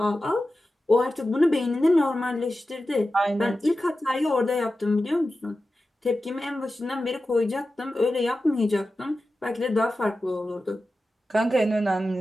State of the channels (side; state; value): both; normal; correlation 0.93